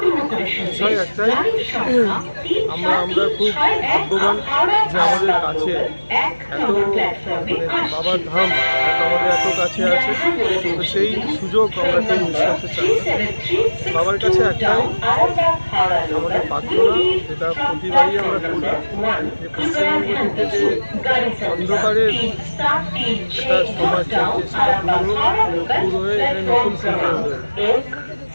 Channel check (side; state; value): both; inverted; correlation -1.00